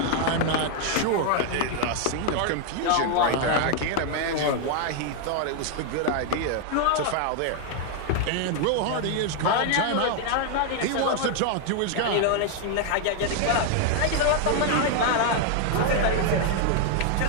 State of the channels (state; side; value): different; both; correlation 0.00